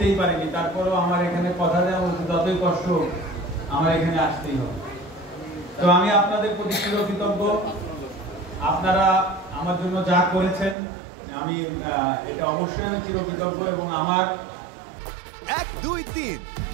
পারিনি, তারপরেও আমার এখানে কথা দেওয়া যতই কষ্ট আমার এখানে আসতেই হবে। তো আমি আপনাদের প্রতি চিরকৃতজ্ঞ। আপনারা আমার জন্য যা করেছেন আমি এটা অবশ্যই আমি চিরকৃতজ্ঞ। এবং আমার 1, 2, 3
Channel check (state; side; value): drops out; left; at 10.8 s